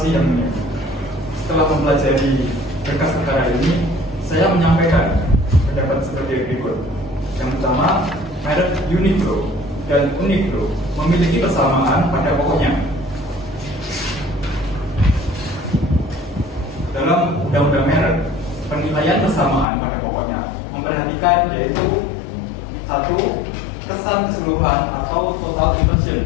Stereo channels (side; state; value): right; drops out; at 19.7 s